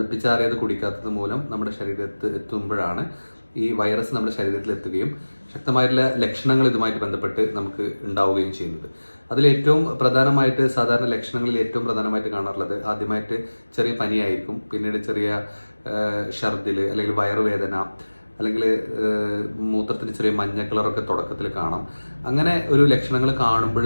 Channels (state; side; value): inverted; both; correlation -1.00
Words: കുടിക്കാത്തത് മൂലം നമ്മുടെ ശരീരത്തിൽ എത്തുമ്പോഴാണ് ഈ വൈറസ് നമ്മുടെ ശരീരത്തിൽ എത്തുകയും ശക്തമായിട്ടുള്ള ലക്ഷണങ്ങൾ ഇതുമായിട്ട് ബന്ധപ്പെട്ട് നമുക്ക് ഉണ്ടാവുകയും ചെയ്യുന്നത്. അതിലേറ്റവും പ്രധാനമായിട്ട് സാധാരണ ലക്ഷണങ്ങളിൽ ഏറ്റവും പ്രധാനമായിട്ട് കാണാറുള്ളത് ആദ്യമായിട്ട് ചെറിയ പനിയായിരിക്കും, പിന്നീട് ചെറിയ ഛർദിൽ അല്ലെങ്കിൽ വയറുവേദന, അല്ലെങ്കിൽ മൂത്രത്തിന് ചെറിയ മഞ്ഞ കളറൊക്കെ തുടക്കത്തിൽ കാണാം. അങ്ങനെ ഒരു ലക്ഷണങ്ങൾ കാണുമ്പോൾ